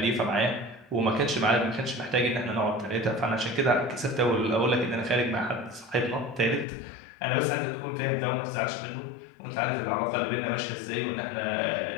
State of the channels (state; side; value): drops out; right; at 6.7 s